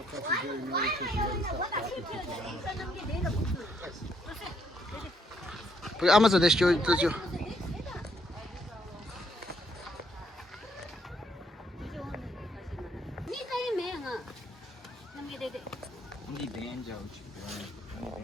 그 아마존 대쇼 뜨죠.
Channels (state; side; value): normal; both; correlation 0.71